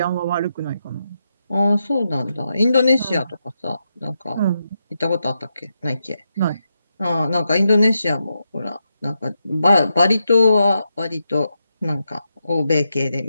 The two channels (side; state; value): both; inverted; correlation -0.85